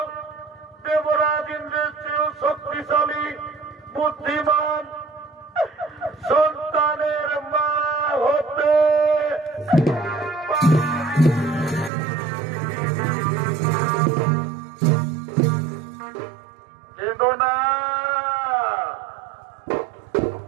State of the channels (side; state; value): left; drops out; at 11.9 s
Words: দেবরাজ ইন্দ্রের চেয়েও শক্তিশালী বুদ্ধিমান সন্তানের মা হতে। কেঁদো